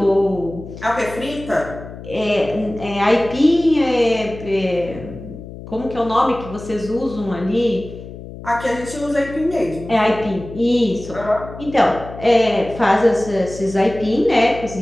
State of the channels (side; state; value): left; noise; hum, 13 dB below the sound